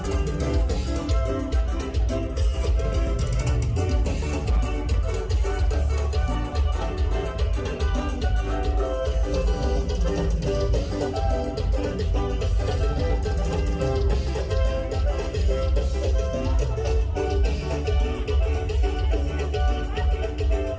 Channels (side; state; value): both; identical; correlation 1.00